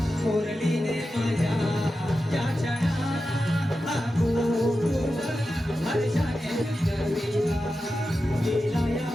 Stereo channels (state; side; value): normal; both; correlation 0.91